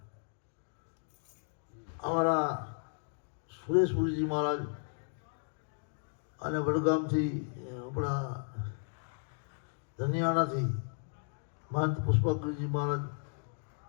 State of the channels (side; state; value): right; silent; digital silence